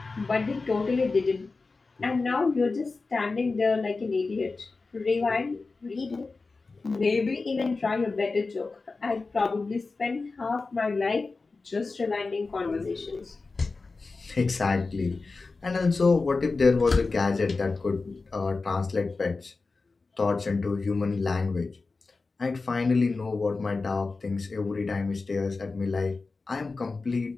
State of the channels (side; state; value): right; quieter; 3.9 dB